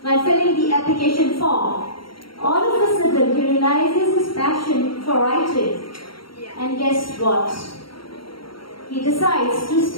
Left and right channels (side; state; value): right; late; 0.74 ms